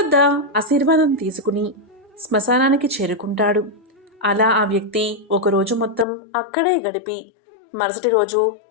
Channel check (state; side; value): drops out; right; at 6.1 s